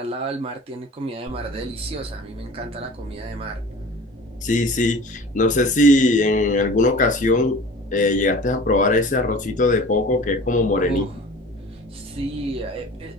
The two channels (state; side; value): normal; both; correlation 0.42